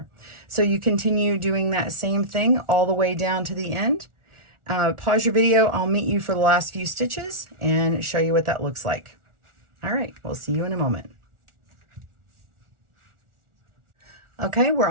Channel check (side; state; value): left; late; 1.4 ms